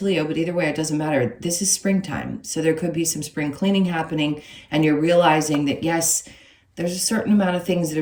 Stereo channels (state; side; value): identical; both; correlation 1.00